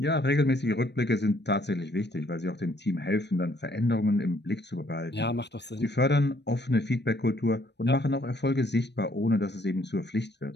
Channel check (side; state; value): right; late; 0.50 ms